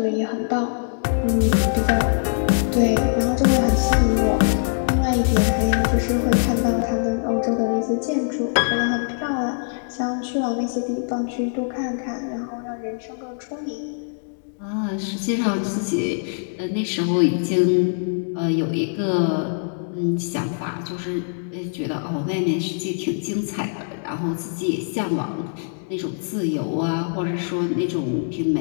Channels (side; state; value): right; silent; digital silence